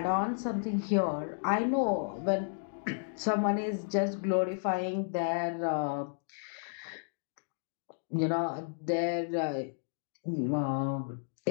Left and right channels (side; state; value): right; silent; digital silence